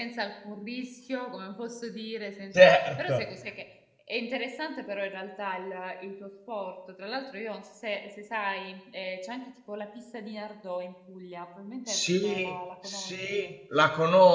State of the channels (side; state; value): both; identical; correlation 1.00